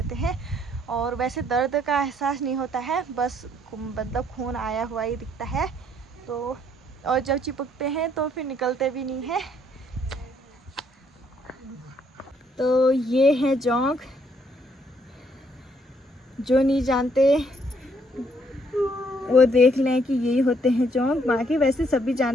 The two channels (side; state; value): both; normal; correlation 0.68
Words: हैं। और वैसे दर्द का एहसास नहीं होता है, बस मतलब खून आया हुआ ही दिखता है। तो और जब चिपकते हैं तो फिर निकलते भी नहीं है। तो ये है जोंक, जो नहीं जानते वो देख लें कि यही होते हैं जोंक। बाकी वैसे सभी